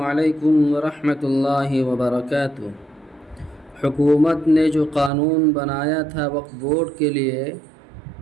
ورحمۃ اللہ وبرکاتہ۔ حکومت نے جو قانون بنایا تھا وقف بورڈ کے لیے،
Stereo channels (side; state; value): left; drops out; at 5.1 s